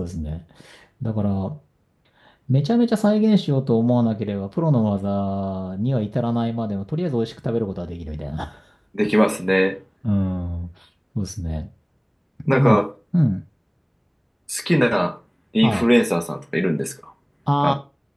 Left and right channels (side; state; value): both; identical; correlation 1.00